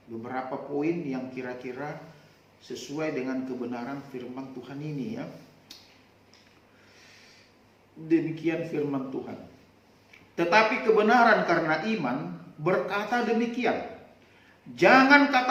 beberapa poin yang kira-kira sesuai dengan kebenaran firman Tuhan ini ya. Demikian firman Tuhan. Tetapi kebenaran karena iman berkata demikian. Jangan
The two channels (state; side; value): identical; both; correlation 1.00